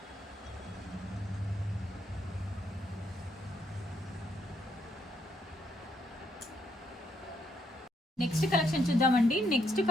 నెక్స్ట్ కలెక్షన్ చూద్దామండి. నెక్స్ట్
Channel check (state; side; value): normal; both; correlation 0.74